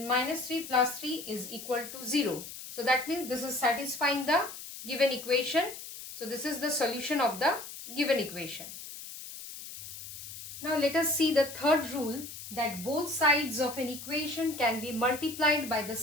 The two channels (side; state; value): left; noise; hiss, 12 dB below the sound